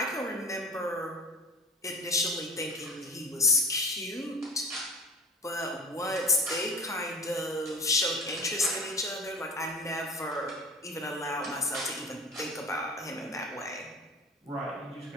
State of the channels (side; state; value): both; normal; correlation 0.36